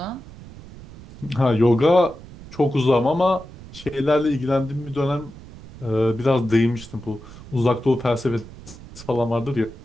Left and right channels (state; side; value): noise; right; rumble, 17 dB below the sound